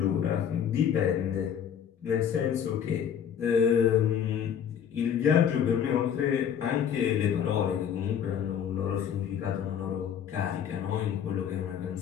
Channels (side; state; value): right; quieter; 8.6 dB